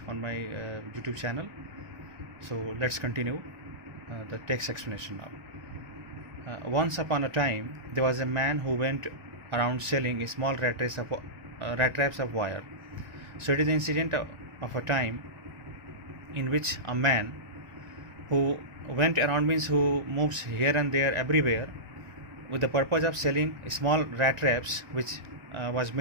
on my YouTube channel. So let's continue the text explanation now. Once upon a time there was a man who went around selling small rat traps of wire. So it is the incident of a time in which a man who went around, means who moves here and there everywhere, with the purpose of selling small rat traps which was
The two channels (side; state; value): left; late; 1.5 ms